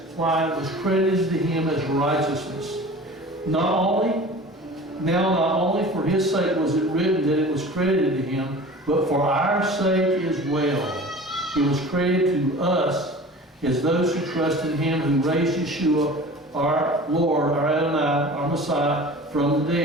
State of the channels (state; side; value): normal; both; correlation 0.40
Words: why it was credited to him as righteousness. Not only for his sake was it written that it was credited to him, but for our sake as well. It was credited to us as those who trust in him who raised Yeshua, our Lord, our Adonai, our Messiah, from the